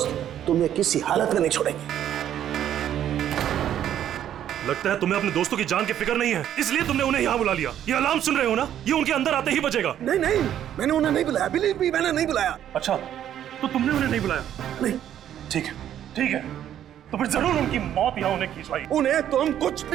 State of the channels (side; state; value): left; quieter; 10.7 dB